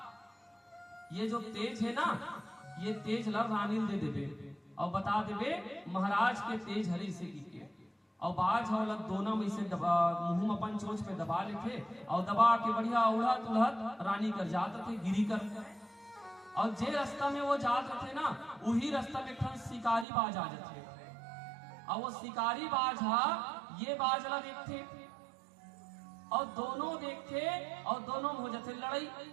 ये जो तेज है ना ये तेज ला रानी दे देबे और बता देबे महाराज के तेज हरी से की। और बाज वाला दोनों में से मुंह अपन चोंच पे दबा लेते और दबा के बढ़िया उड़हत उड़हत रानी कर जात थे गिरी कर। और जे रास्ता में वो जात रहे ना, वही रास्ता में एक शिकारी बाज आ जाते और वो शिकारी बाज हा ये बाज ला देखते और दोनों देखते और दोनों में हो जाते लड़ाई।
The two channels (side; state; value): left; drops out; at 20.1 s